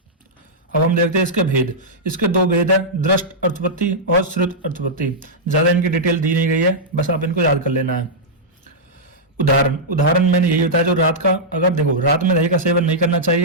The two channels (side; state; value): both; normal; correlation -0.09